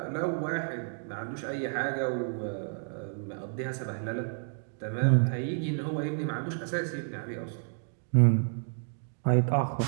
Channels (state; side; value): silent; left; digital silence